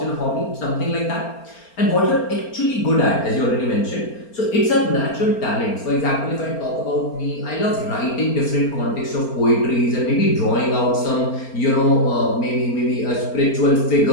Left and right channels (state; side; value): late; right; 4.3 ms